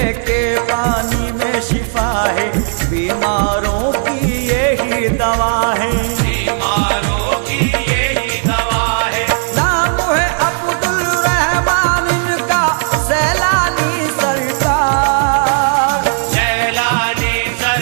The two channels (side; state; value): left; silent; 61 dB below the other